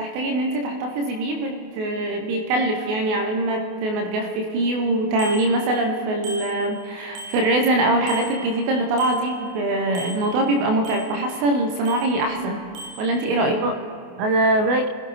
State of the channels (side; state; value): left; late; 28 ms